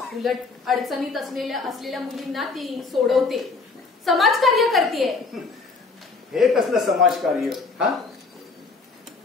उलट अडचणीत असलेल्या मुलींना ती सोडवते, समाजकार्य करते. हे कसलं समाजकार्य? हा,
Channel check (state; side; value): quieter; right; 4.2 dB